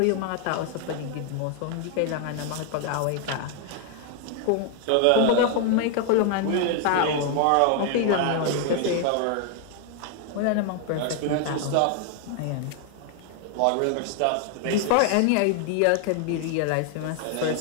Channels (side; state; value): both; different; correlation 0.00